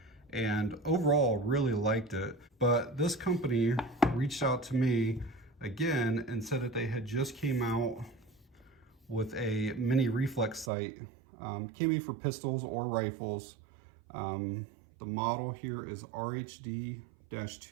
and overall really liked it, but this company reached out to me again and said that they had just came out with a mini reflex sight. Can be for pistols or rifles. The model here is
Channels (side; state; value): left; drops out; at 10.7 s